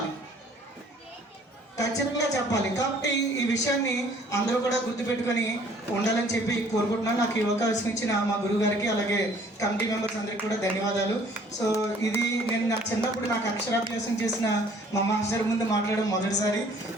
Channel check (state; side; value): normal; both; correlation 0.56